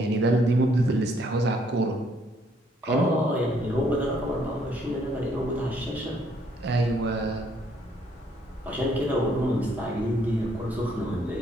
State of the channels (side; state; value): both; normal; correlation 0.68